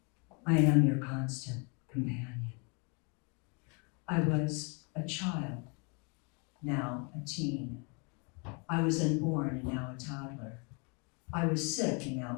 I am your constant companion. I was a child, now a teen. I was unborn and now a toddler. I was sick and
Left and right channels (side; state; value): right; quieter; 34.0 dB